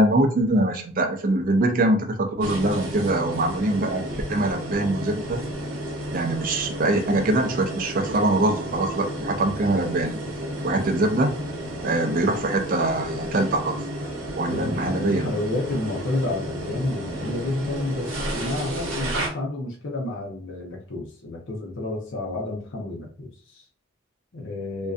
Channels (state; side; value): normal; both; correlation 0.42